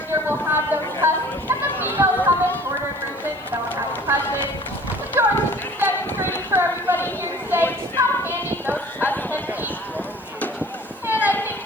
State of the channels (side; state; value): right; noise; hiss, 28 dB below the sound